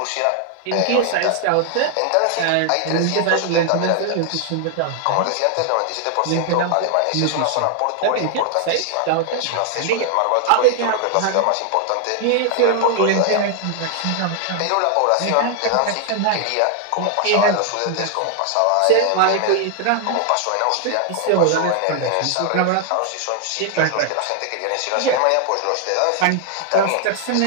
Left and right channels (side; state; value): both; different; correlation 0.00